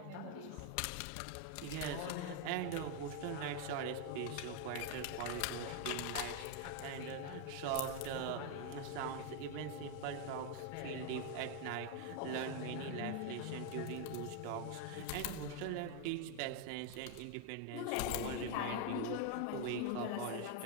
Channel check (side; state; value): both; different; correlation 0.01